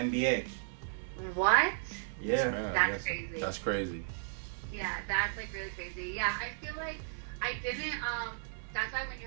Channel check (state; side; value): silent; left; 55 dB below the other